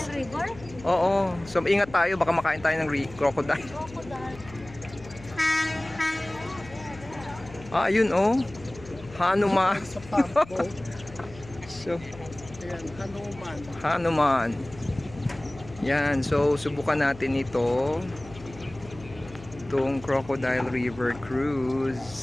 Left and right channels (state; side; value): noise; left; hum, 18 dB below the sound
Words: River? Oo. So, ingat tayo. Baka makain tayo ng crocodile. Crocodile. Ah, ayun oh. Hanuman. So, Ayan, Hanuman. Hanuman. Yan. So, subukan natin ito. Itong Crocodile River